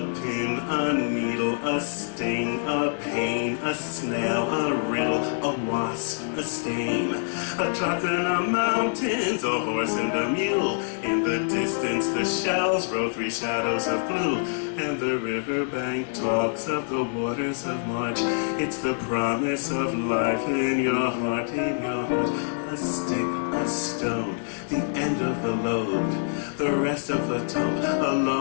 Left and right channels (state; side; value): silent; right; digital silence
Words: pin, a needle, a sting, a pain, a snail, a riddle, a wasp, a stain, a truck in the mountains, a horse and a mule, in the distance the shells roll three shadows of blue, and the riverbank talks of the waters of March. It's the promise of life in your heart, in your heart. A stick, a stone, the end of the load, the rest of the tump, a